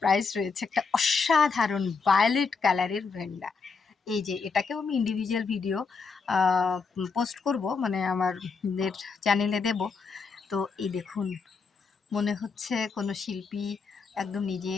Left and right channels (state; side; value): quieter; right; 4.9 dB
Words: রয়েছে, একটা অসাধারণ ভায়োলেট কালারের ভেন্ডা। এই যে এটাকেও আমি ইন্ডিভিজুয়াল ভিডিও পোস্ট করব, মানে আমাদের চ্যানেলে দেব। তো এই দেখুন, মনে হচ্ছে কোনো শিল্পী একদম